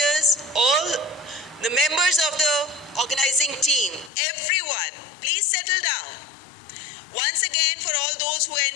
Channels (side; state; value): right; drops out; at 4.1 s